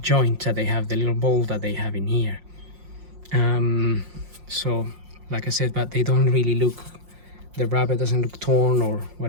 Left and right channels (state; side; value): late; left; 5.6 ms